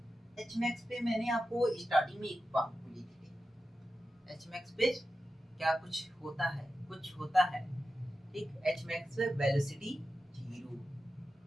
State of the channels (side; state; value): both; normal; correlation 0.92